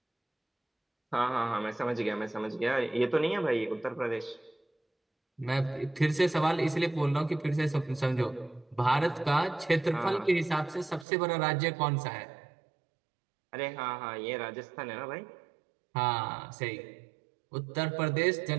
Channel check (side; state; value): left; drops out; at 11.1 s